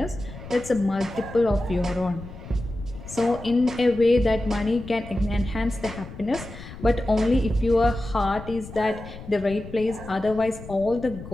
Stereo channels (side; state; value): left; noise; rumble, 14 dB below the sound